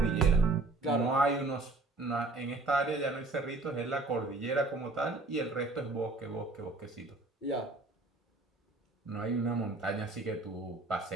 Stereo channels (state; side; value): quieter; left; 3.3 dB